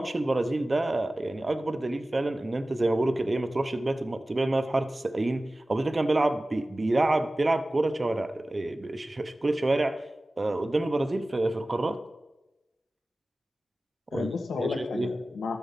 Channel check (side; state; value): both; normal; correlation 0.96